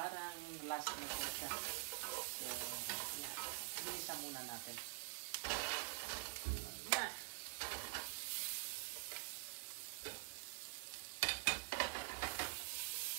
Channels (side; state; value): left; silent; digital silence